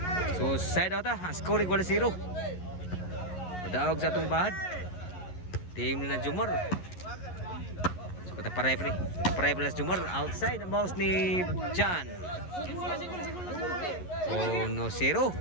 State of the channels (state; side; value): late; right; 11 ms